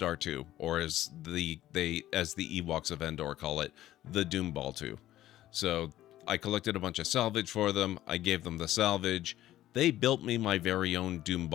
2, or as the Ewoks of Endor call it, the Doom Ball 2. So I collected a bunch of salvage for them. I gave them the salvage. They built me my very own Doom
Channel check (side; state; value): right; quieter; 13.9 dB